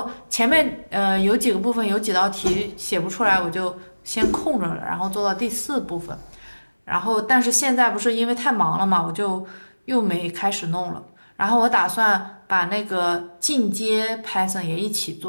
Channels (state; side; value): inverted; both; correlation -1.00